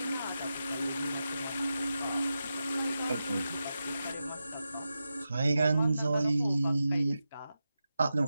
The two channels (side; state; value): both; inverted; correlation -0.90